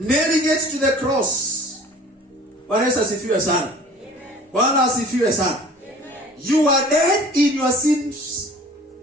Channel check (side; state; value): both; normal; correlation 0.47